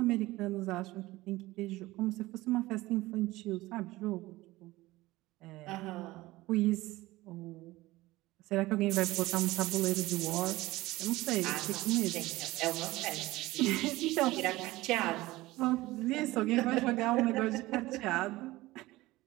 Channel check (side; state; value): left; quieter; 18.7 dB